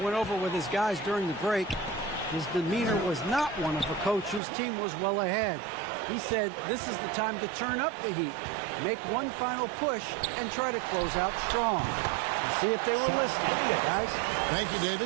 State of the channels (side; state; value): left; drops out; at 4.4 s